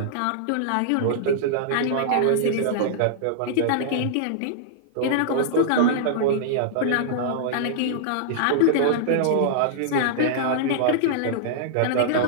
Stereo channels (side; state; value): both; different; correlation -0.01